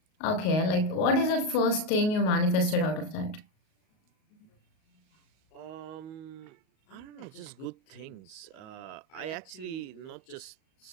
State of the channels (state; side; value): late; right; 38 ms